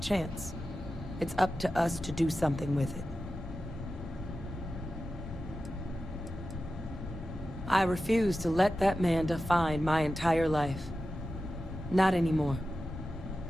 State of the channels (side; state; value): both; normal; correlation 0.93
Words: chance. It's up to us to do something with it. I refuse to let that man define my entire life. Not anymore.